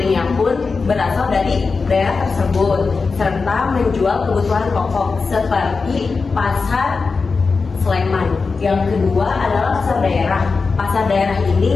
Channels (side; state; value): right; quieter; 4.5 dB